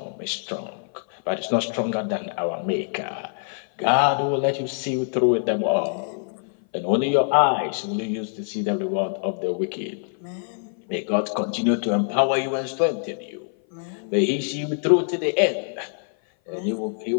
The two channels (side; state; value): right; silent; 57 dB below the other